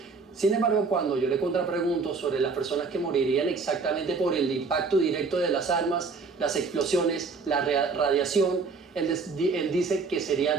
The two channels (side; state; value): left; quieter; 4.5 dB